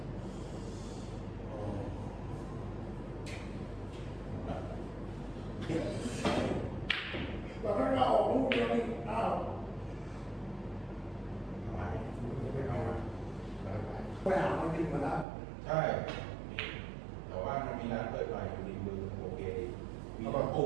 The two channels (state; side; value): drops out; left; at 15.2 s